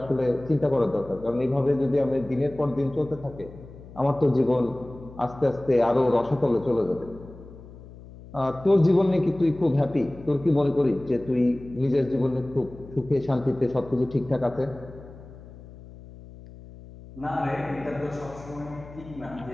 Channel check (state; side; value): noise; left; hum, 18 dB below the sound